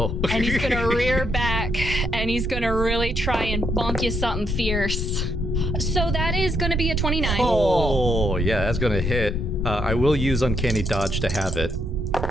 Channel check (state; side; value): normal; both; correlation 0.76